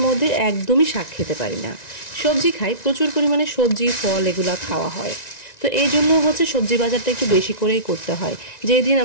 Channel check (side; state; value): right; late; 1.9 ms